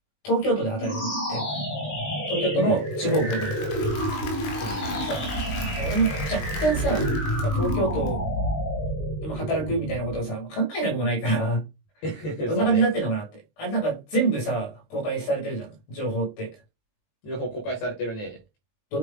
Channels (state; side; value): late; right; 20 ms